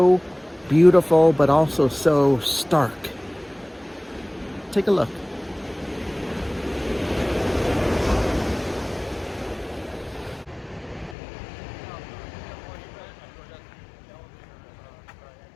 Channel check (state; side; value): drops out; right; at 11.2 s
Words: beautiful, but also so stark. Take a look.